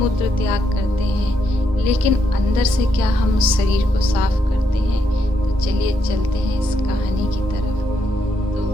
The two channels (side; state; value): both; normal; correlation 0.78